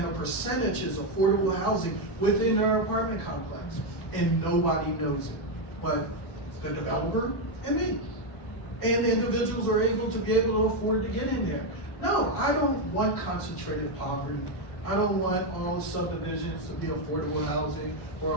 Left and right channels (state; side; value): late; right; 1.1 ms